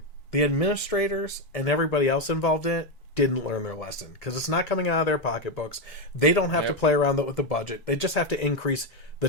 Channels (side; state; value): both; normal; correlation 0.08